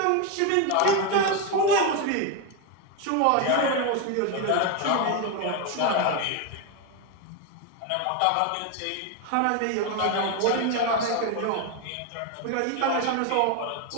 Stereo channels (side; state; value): both; different; correlation 0.02